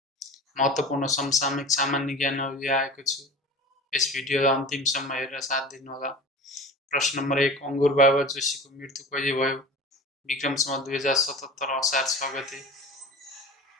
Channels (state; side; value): normal; both; correlation 0.36